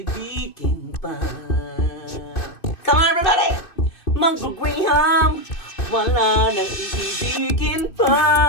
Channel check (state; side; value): late; right; 2.6 ms